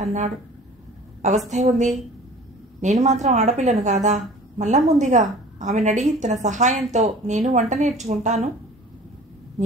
అన్నాడు. అవస్థే ఉంది, నేను మాత్రం ఆడపిల్లను కాదా, మల్లమ్ముందిగా, ఆమెను అడిగి తన సహాయంతో నేను వంట నేర్చుకుంటాను.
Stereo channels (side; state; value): both; normal; correlation 0.45